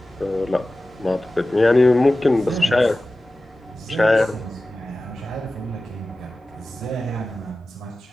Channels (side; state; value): both; normal; correlation 0.96